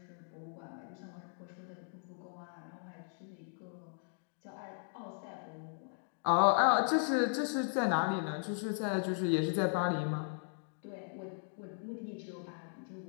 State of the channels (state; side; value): silent; right; digital silence